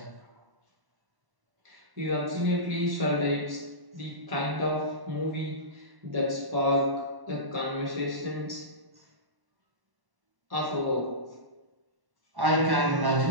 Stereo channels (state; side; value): late; left; 1.0 ms